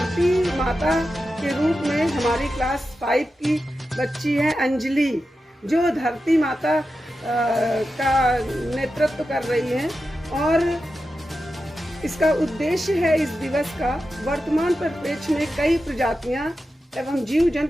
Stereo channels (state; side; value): normal; both; correlation 0.91